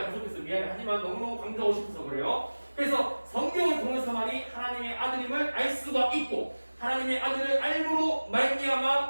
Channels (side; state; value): both; inverted; correlation -1.00